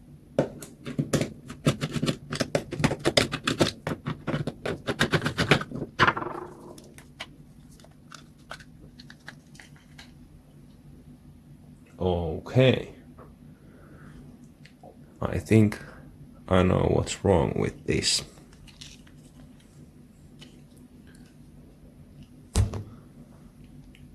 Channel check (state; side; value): identical; both; correlation 1.00